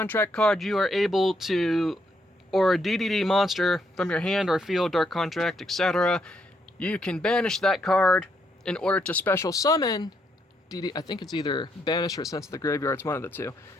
card, you are able to, or a DDD monster from your hand or field, Dark Contract, etc., you can banish that card in order to special summon DD. I think it's either banish or sent to the graveyard. It's one of the two.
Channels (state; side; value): normal; both; correlation 0.75